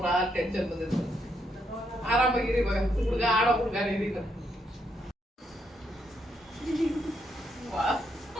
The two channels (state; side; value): normal; both; correlation 0.77